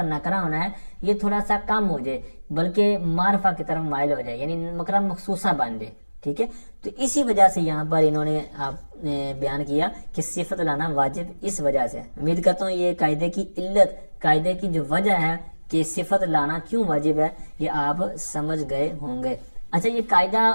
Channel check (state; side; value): inverted; both; correlation -1.00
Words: نکرہ ہونا ہے, یہ تھوڑا سا کم ہو جائے بلکہ معرفہ کی طرف مائل ہو جائے, یعنی نکرہ مخصوصہ بن جائے. ٹھیک ہے, تو اسی وجہ سے یہاں پر انہوں نے بیان کیا کہ صفت لانا واجب اس وجہ سے. امید کرتا ہوں یہ قاعدے کی علت, قاعدے کی جو وجہ ہے کہ صفت لانا کیوں واجب ہے یہ آپ سمجھ گئے ہوں گے. اچھا, یہ قاعدہ